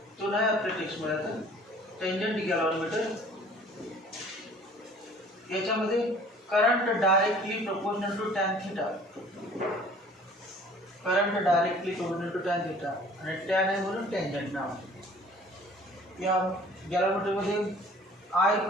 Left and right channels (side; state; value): both; normal; correlation 0.51